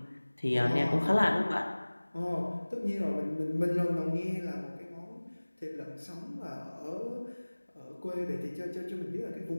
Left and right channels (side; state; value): both; inverted; correlation -1.00